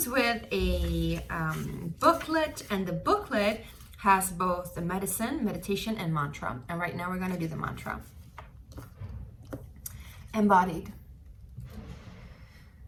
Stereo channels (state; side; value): identical; both; correlation 1.00